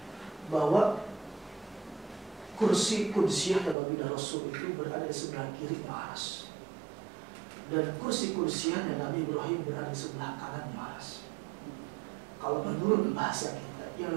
bahwa kursi kudsiyahnya baginda Rasul itu berada di sebelah kiri aras, dan kursi kudsiyahnya Nabi Ibrahim berada di sebelah kanan aras. Kalau menurut bahasa kita, yang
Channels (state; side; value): drops out; left; at 3.8 s